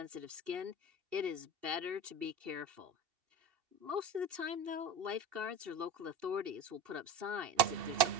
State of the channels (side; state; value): left; late; 2.7 ms